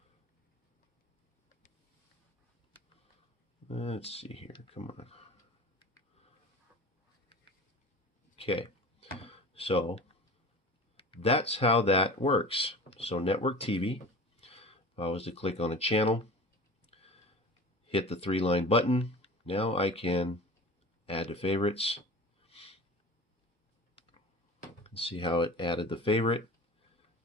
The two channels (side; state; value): both; normal; correlation 0.37